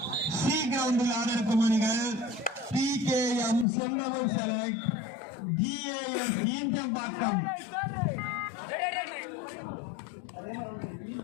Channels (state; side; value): drops out; right; at 3.7 s